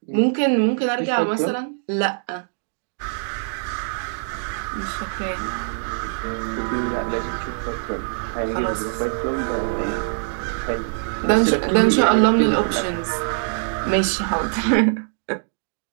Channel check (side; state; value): left; silent; digital silence